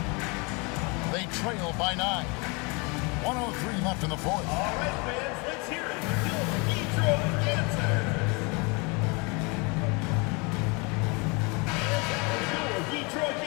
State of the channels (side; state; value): right; quieter; 29.9 dB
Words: They trail by 9. 1:03 left in the fourth. All right, fans, let's hear it. Detroit Dancers. Detroit